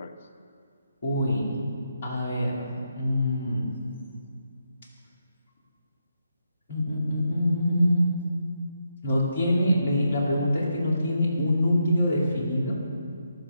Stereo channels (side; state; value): both; inverted; correlation -0.82